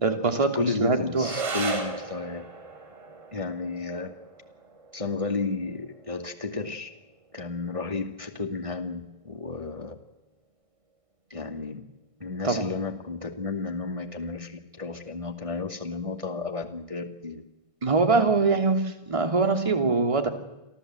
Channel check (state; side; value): late; left; 1.6 ms